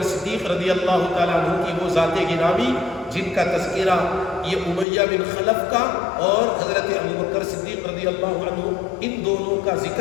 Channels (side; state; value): right; drops out; at 4.9 s